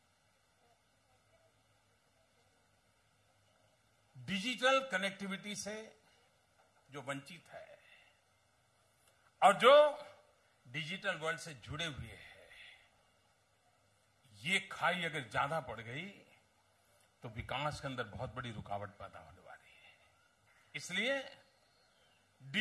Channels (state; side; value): identical; both; correlation 1.00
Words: डिजिटल कनेक्टिविटी से जो वंचित है और जो डिजिटल वर्ल्ड से जुड़े हुए हैं, ये खाई अगर ज्यादा पड़ गई तो विकास के अंदर बहुत बड़ी रुकावट पैदा होने वाली है। इसलिए